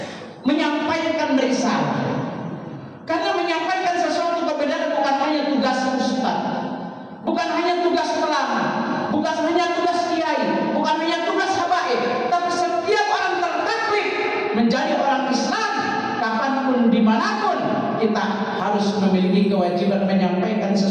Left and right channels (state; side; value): identical; both; correlation 1.00